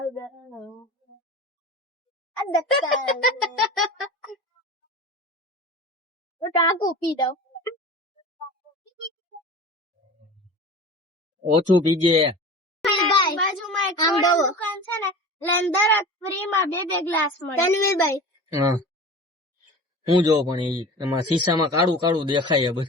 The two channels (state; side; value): normal; both; correlation 0.35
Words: ટાંકું પી દઉં. ઓછું પીજે. બાજુમાં એક દુકાન છે ને, લેન્ડર ફ્રીમાં 2 ગ્લાસ મળે. તનવીરભાઈ હા હું જો પણ એમાં શીશામાં કાળું કાળું દેખાય